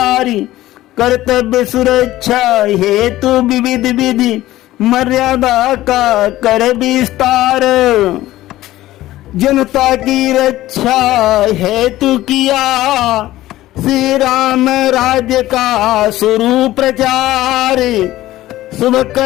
कर्तव्य सुरक्षा हेतु विविध विधि मर्यादा का कर विस्तार। जनता की रक्षा हेतु किया श्री राम राज्य का शुरू प्रचार। शुभ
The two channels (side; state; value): right; quieter; 15.7 dB